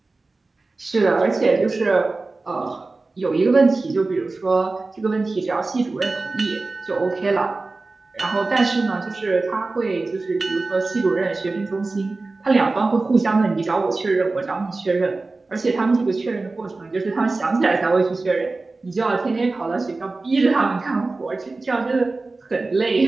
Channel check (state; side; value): quieter; left; 3.5 dB